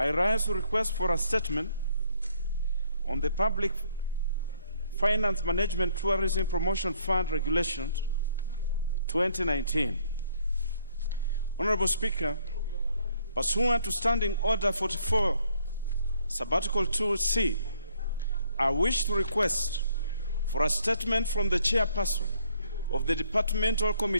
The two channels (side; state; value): both; inverted; correlation -0.66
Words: rise to request for a statement on the Public Finance Management Tourism Promotion Fund Regulations 2019. Honorable Speaker, pursuant to Standing Order 44, Sabbatical 2C, I wish to request for a statement from the chairperson of the Departmental